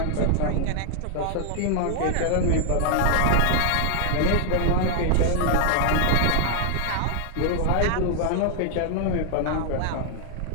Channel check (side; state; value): both; different; correlation 0.00